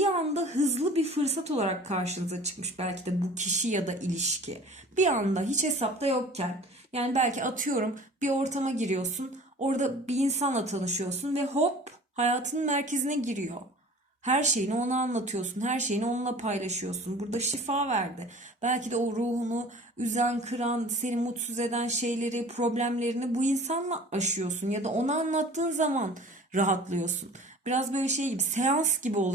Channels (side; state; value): both; normal; correlation 0.45